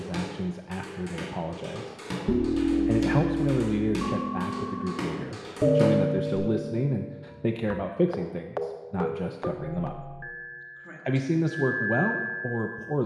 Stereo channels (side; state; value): both; identical; correlation 1.00